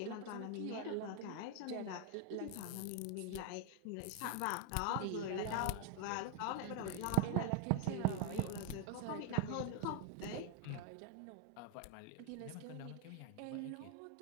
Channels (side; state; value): both; different; correlation 0.00